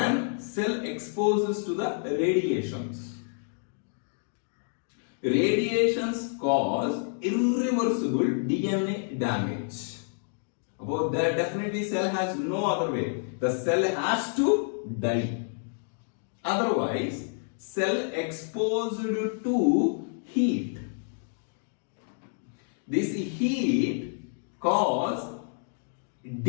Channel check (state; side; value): silent; right; digital silence